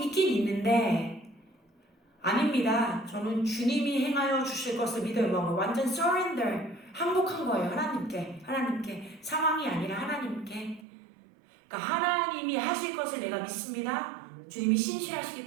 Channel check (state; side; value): drops out; left; at 10.9 s